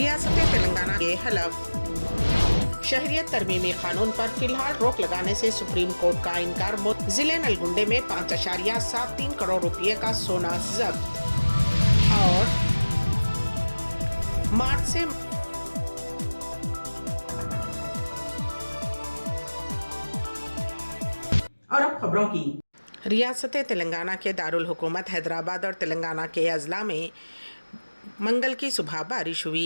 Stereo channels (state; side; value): inverted; both; correlation -1.00